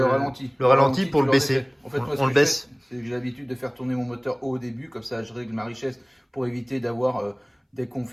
ralenti. Le ralenti pour le baisser. En fait, moi, on le baisse. C'est que j'ai l'habitude de faire tourner mon moteur haut au début, comme ça je règle ma richesse pour éviter d'avoir dès qu'on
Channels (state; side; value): identical; both; correlation 1.00